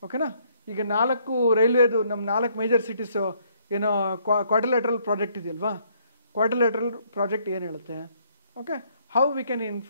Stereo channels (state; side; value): inverted; both; correlation -0.67